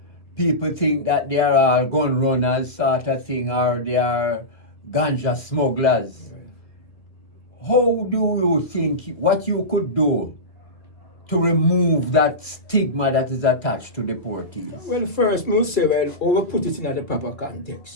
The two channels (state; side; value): late; right; 2.0 ms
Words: People think that they are all gun runners sort of thing, or they are ganja smugglers. How do you think, what you could do to remove that stigma that is attached to deportees? Well, first, we'll say, well, we put it in the proper